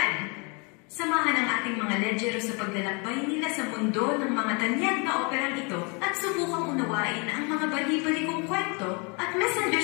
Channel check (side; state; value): right; quieter; 32.5 dB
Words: Samahan ang ating mga ledyero sa paglalakbay nila sa mundo ng mga tanyag na operang ito at subukang unawain ang mga bali-balikong kwento at